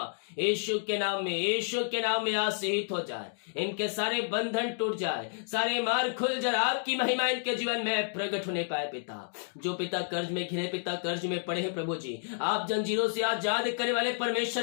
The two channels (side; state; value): right; silent; digital silence